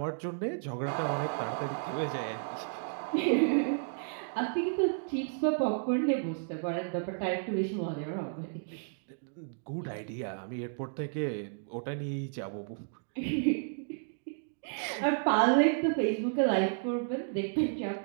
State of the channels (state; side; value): silent; left; digital silence